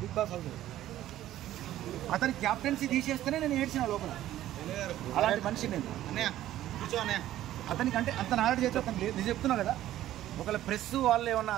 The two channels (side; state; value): left; quieter; 13.4 dB